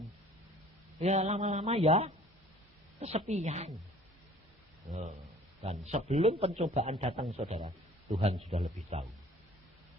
ya lama-lama ya kesepian. Dan sebelum pencobaan datang, saudara, Tuhan sudah lebih tahu.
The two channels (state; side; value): normal; both; correlation 0.51